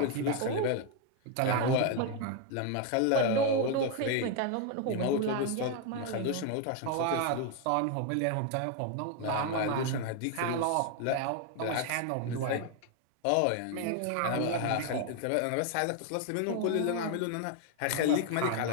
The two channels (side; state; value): both; different; correlation 0.01